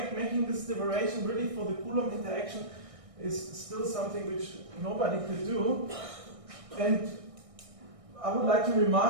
this derivation really for the Coulomb interaction is still something which nobody could do. And I would like to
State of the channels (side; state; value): left; late; 1.6 ms